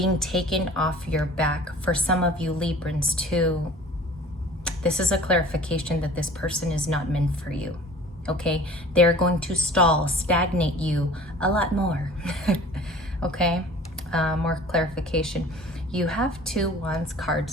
taken off your back. For some of you Librans too, this is a clarification that this person is not meant for you. Okay, they're going to stall, stagnate you a lot more. Okay, more clarification. You have 2 Wands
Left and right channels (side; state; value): both; normal; correlation 0.45